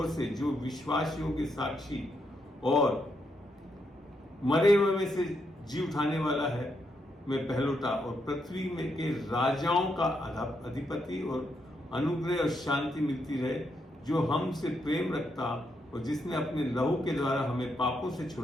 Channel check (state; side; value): normal; both; correlation 0.79